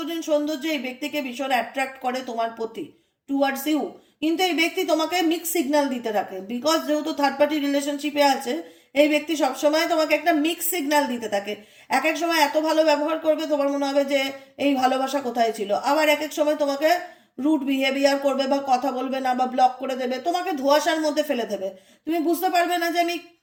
সৌন্দর্য এই ব্যক্তিকে ভীষণ অ্যাট্রাক্ট করে তোমার প্রতি, টুয়ার্ডস ইউ, কিন্তু এই ব্যক্তি তোমাকে মিক্স সিগন্যাল দিতে থাকে, বিকজ যেহেতু থার্ড পার্টি রিলেশনশিপে আছে এই ব্যক্তি সবসময় তোমাকে একটা মিক্স সিগন্যাল দিতে থাকে, এক এক সময় এত ভালো ব্যবহার করবে তোমার মনে হবে যে এই ভালোবাসা কোথায় ছিল, আবার এক এক সময় তোমাকে রুড বিহেভিয়ার করবে বা কথা বলবে না বা ব্লক করে দেবে, তোমাকে ধোঁয়াশার মধ্যে ফেলে দেবে, তুমি বুঝতে পারবে না যে আমি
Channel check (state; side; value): identical; both; correlation 1.00